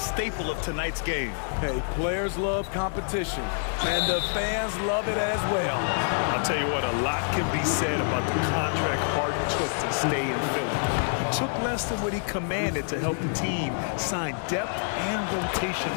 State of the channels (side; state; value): right; silent; digital silence